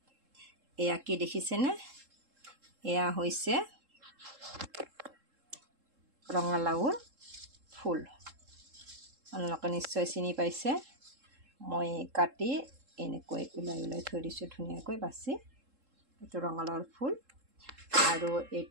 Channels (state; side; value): late; left; 3.7 ms